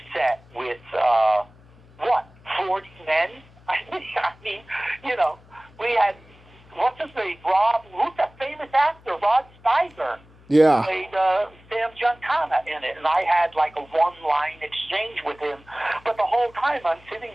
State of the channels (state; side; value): noise; left; hum, 26 dB below the sound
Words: set with, 40 men? I mean, we had, what's his name, who's that famous actor, Rod Steiger. Yeah. Played Sam Giancana in it, and I had like a one-line exchange with him. But the whole time I'm sitting